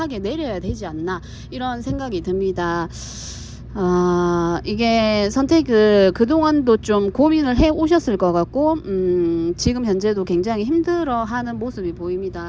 내려야 되지 않나 이런 생각이 듭니다. 이게 선택을 그동안도 좀 고민을 해 오셨을 것 같고 지금 현재도 굉장히 힘들어 하는 모습이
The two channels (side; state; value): both; identical; correlation 1.00